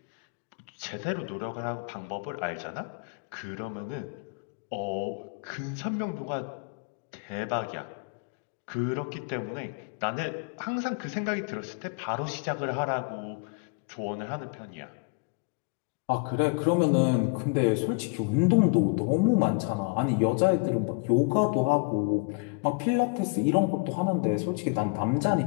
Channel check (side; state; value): right; quieter; 32.6 dB